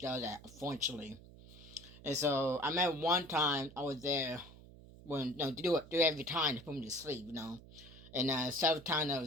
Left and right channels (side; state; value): right; noise; hum, 19 dB below the sound